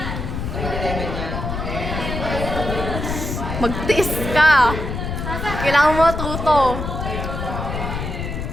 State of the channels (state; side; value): noise; left; rumble, 4 dB below the sound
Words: Magtiis ka. Kailangan mo tuto.